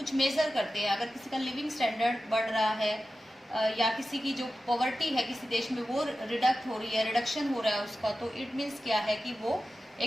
मेज़र करते हैं। अगर किसी का लिविंग स्टैंडर्ड बढ़ रहा है या किसी की जो पॉवर्टी है किसी देश में वो रिडक्ट हो रही है, रिडक्शन हो रहा है उसका, तो इट मीन्स क्या है कि वो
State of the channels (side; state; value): both; normal; correlation 0.93